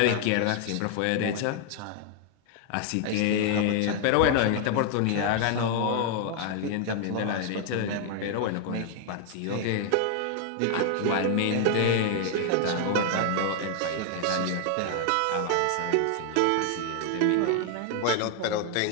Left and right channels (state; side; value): different; both; correlation 0.00